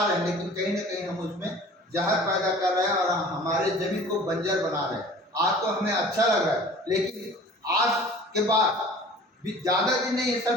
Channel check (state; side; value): normal; both; correlation 0.45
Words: रहे हैं, लेकिन कहीं ना कहीं हम उसमें जहर पैदा कर रहे हैं और हमारे जमीन को बंजर बना रहे हैं। आज तो हमें अच्छा लग रहा है, लेकिन आज के बाद भी ज़्यादा दिन नहीं है